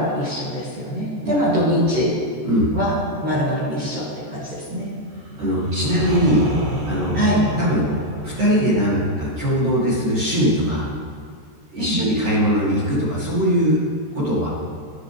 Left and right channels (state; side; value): late; left; 13 ms